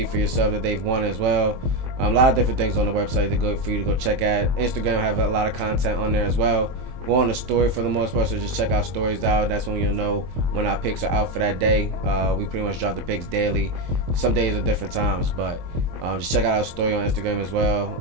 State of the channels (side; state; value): left; late; 23 ms